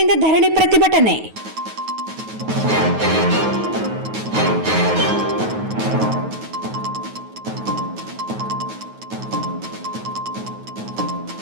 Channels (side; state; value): left; late; 9.3 ms